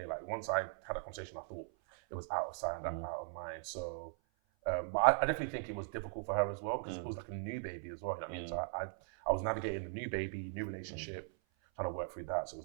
Like once I had that conversation, I thought it was out of sight and out of mind. So, but I definitely think it was difficult for her as well because it was like a new baby as well. You know what I mean? So I was navigating the new baby, new relationship, trying to work through that. So it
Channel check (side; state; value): left; silent; 52 dB below the other